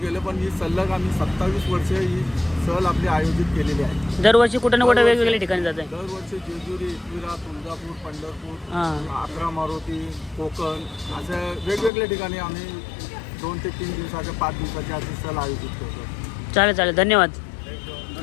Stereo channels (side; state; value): right; drops out; at 11.9 s